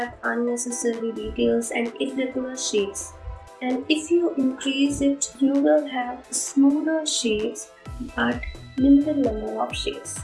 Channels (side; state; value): both; identical; correlation 1.00